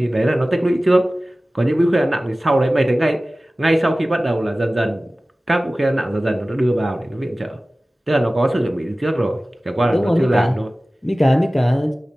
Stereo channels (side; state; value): both; normal; correlation 0.97